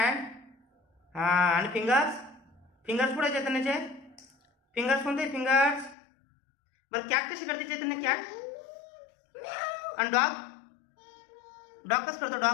हां, आणि फिंगर्स कुठे आहे चैतन्याचे? फिंगर्स कोणते? फिंगर्स. बरं कॅट कशी करते चैतन्य? कॅट. आणि डॉग कसं करतो?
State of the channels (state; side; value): drops out; right; at 6.0 s